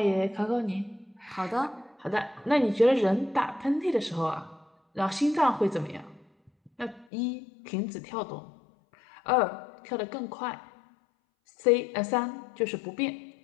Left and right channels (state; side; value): drops out; right; at 7.1 s